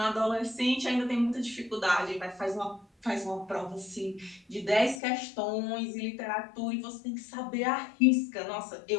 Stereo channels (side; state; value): right; drops out; at 5.0 s